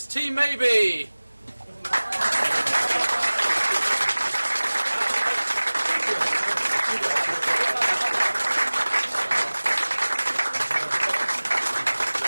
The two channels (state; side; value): inverted; both; correlation -1.00